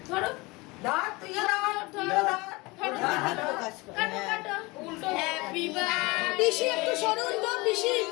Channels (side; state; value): right; quieter; 23.9 dB